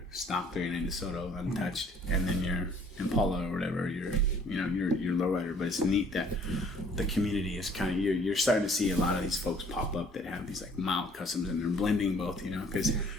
stock 39 DeSoto untouched, and then your Impala or whatever, your lowrider. But it's neat that the community is kind of, you're starting to see a lot of these folks pop up that have these like mild customs, and they're blending both, you know, because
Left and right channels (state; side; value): normal; both; correlation 0.58